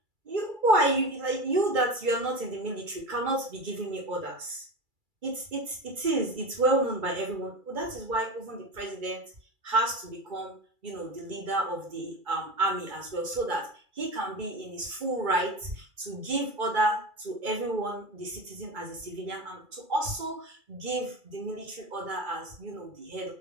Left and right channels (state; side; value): late; left; 2.3 ms